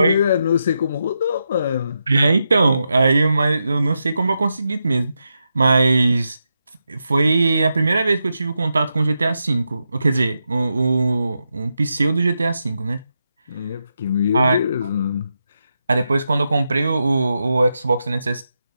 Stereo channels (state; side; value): inverted; both; correlation -0.86